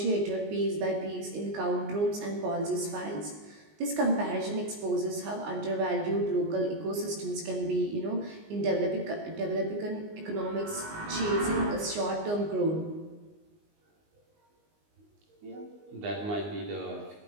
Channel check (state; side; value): late; left; 19 ms